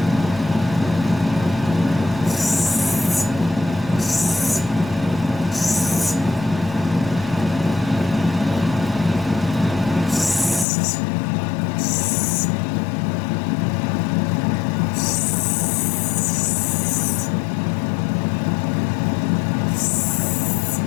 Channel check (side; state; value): right; drops out; at 10.7 s